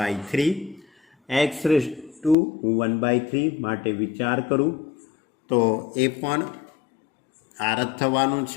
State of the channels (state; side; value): drops out; right; at 2.4 s